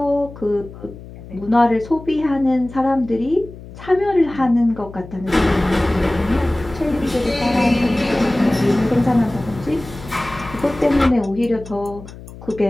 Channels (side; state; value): left; noise; hum, 16 dB below the sound